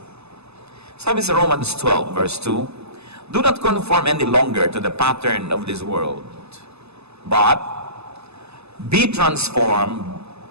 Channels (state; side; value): late; left; 0.79 ms